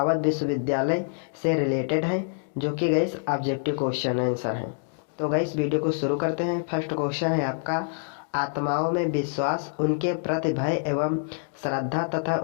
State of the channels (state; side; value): silent; right; digital silence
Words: विश्वविद्यालय से रिलेटेड है, जो कि गाइस ऑब्जेक्टिव क्वेश्चन आंसर है। तो गाइस वीडियो को शुरू करते हैं। फर्स्ट क्वेश्चन है आपका, आत्माओं में विश्वास, उनके प्रति भय एवं श्रद्धा तथा